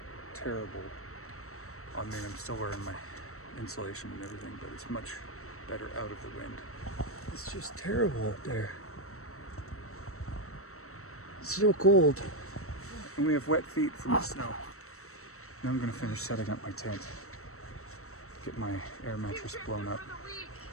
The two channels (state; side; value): late; right; 0.64 ms